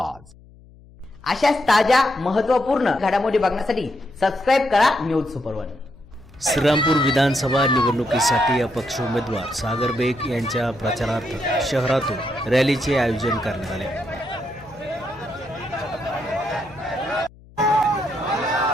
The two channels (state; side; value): noise; left; hum, 24 dB below the sound